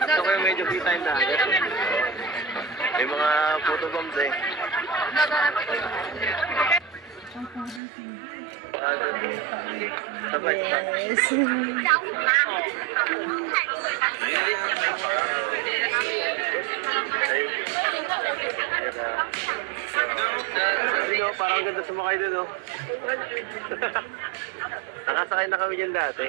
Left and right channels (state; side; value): drops out; left; at 7.8 s